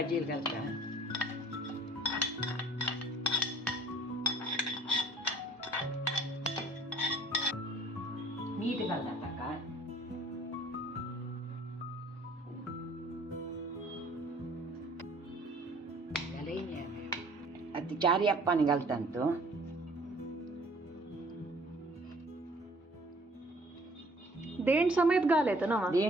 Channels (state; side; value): normal; both; correlation 0.54